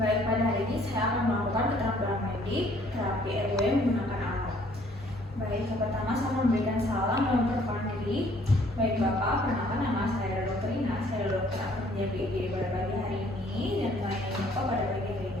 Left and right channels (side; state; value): both; normal; correlation 0.60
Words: Baik, pada hari ini saya akan melakukan keterampilan medik terapi airway menggunakan alat. Baik, yang pertama saya memberikan salam dan memperkenalkan diri. Baik Bapak, perkenalkan nama saya Dr. Ina. Saya dokter Akhirnya BG pada pagi hari ini dan melayani Bapak pada pagi hari